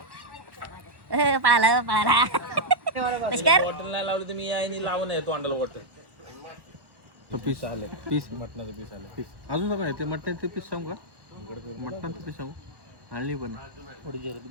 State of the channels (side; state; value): left; late; 1.1 ms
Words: पळाला पळाला पुष्कर बॉटल नाही लावलं तर मी यायनी लावून आहे तोंडाला बॉटल. पीस आले, पीस मटणाचं पीस आले, पीस अजून काय ते मटणाचे पीस सांगू का? मटणाचं पीस सांगू आणली पण थोडी